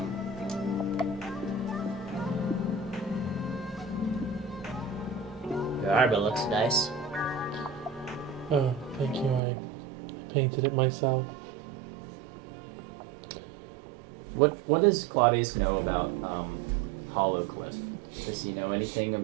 Your armor looks nice. Oh, thank you. I painted it myself. what does Claudius know about Hollowcliff? Does he know anything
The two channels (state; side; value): drops out; left; at 9.4 s